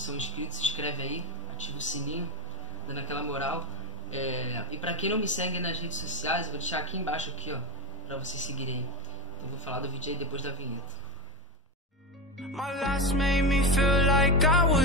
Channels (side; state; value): both; normal; correlation 0.17